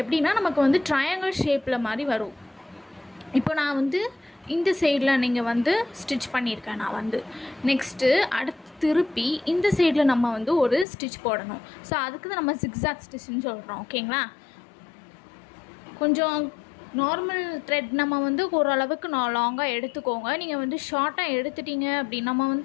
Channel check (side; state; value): right; drops out; at 10.9 s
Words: எப்படின்னா நமக்கு வந்து ட்ரையாங்கிள் ஷேப்பில் மாதிரி வரும். இப்போ நான் வந்து இந்த சைடில் நீங்கள் வந்து ஸ்டிச் பண்ணியிருக்கேன். நான் வந்து நெக்ஸ்ட்டு அடுத்து திருப்பி இந்த சைடில் நம்ம வந்து ஒரு ஸ்டிச் போடணும். ஸோ அதுக்கு தான் நம்ம ஜிக்ஸாக் ஸ்டிச்சுன்னு சொல்கிறோம். ஓகேங்களா, கொஞ்சம் நார்மல் த்ரெட் நம்ம வந்து ஓரளவுக்கு லாங்காக எடுத்துக்கோங்க. நீங்கள் வந்து ஷார்ட்டாக எடுத்துட்டீங்க அப்படின்னு நம்ம